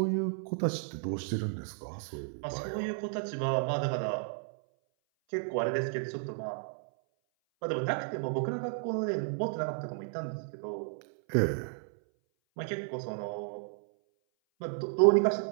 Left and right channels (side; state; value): left; silent; 56 dB below the other